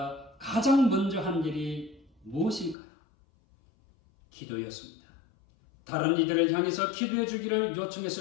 가장 먼저 한 일이 무엇일까요? 기도였습니다. 다른 이들을 향해서 기도해 주기를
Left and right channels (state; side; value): drops out; right; at 2.8 s